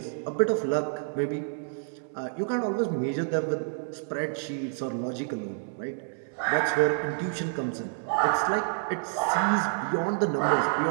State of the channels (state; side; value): silent; left; digital silence